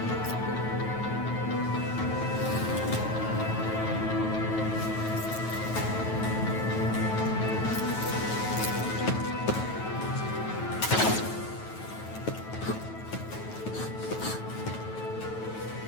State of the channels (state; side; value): late; right; 9.2 ms